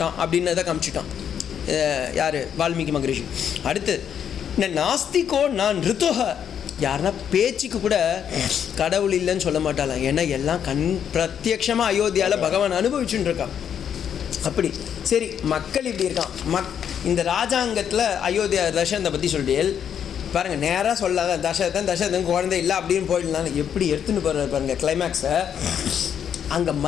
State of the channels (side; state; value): right; quieter; 8.6 dB